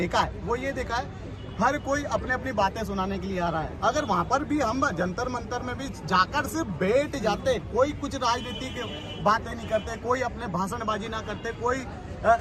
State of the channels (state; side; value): identical; both; correlation 1.00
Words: है, वो ये देखा है, हर कोई अपने अपनी बातें सुनाने के लिए आ रहा है। अगर वहाँ पर भी हम जंतर मंतर में भी जाकर सिर्फ बैठ जाते, कोई कुछ राजनीति की बातें नहीं करते, कोई अपने भाषणबाजी ना करते, कोई